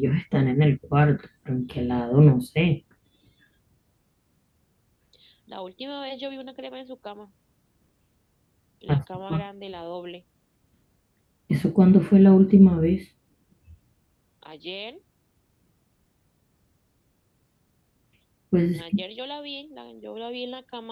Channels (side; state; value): both; identical; correlation 1.00